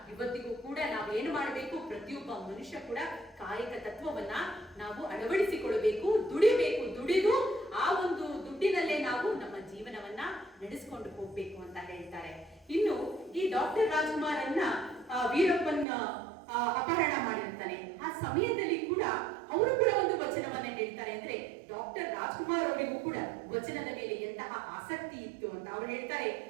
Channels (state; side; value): drops out; left; at 15.9 s